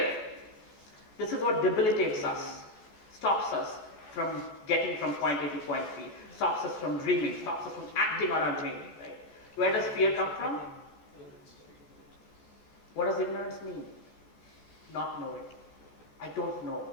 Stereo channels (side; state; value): right; late; 14 ms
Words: This is what debilitates us, stops us from getting from point A to point B, stops us from dreaming, stops us from acting on our dream, right? Where does fear come from? What does ignorance mean? Not knowing. I don't know.